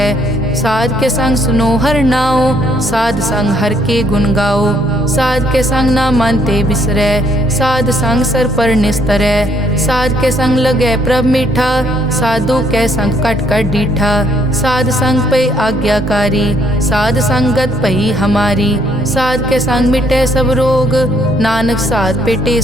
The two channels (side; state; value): right; noise; hum, 28 dB below the sound